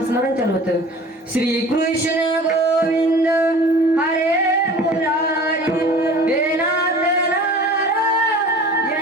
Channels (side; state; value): both; normal; correlation 0.43